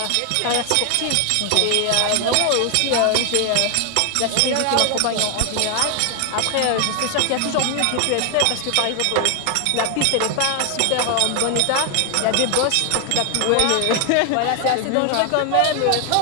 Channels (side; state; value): both; different; correlation 0.00